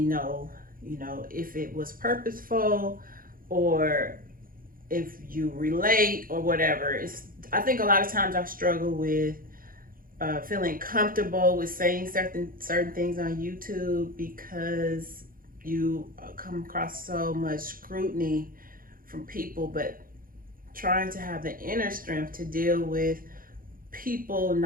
know, if it was purposeful or if you relate or whatever. I think a lot of times I struggle with feeling comfortable with saying certain things on YouTube because you come across so much scrutiny from people, but trying to have the inner strength to deal with people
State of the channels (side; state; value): left; late; 0.41 ms